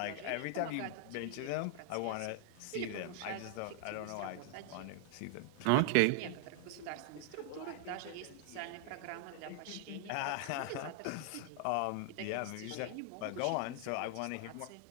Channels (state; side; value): different; both; correlation 0.00